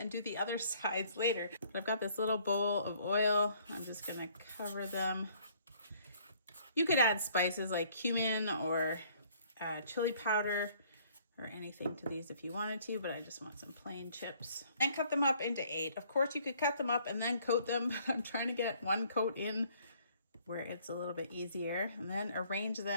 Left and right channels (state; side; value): inverted; both; correlation -0.61